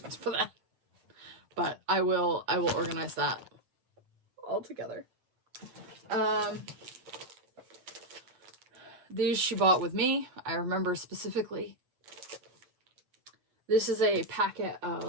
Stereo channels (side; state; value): left; late; 8.2 ms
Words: for that. But I will organize that all together. These she bought with me. I remember specifically. This is a packet